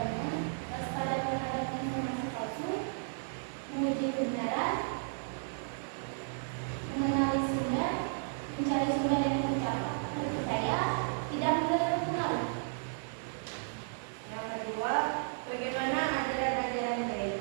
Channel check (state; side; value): silent; left; 55 dB below the other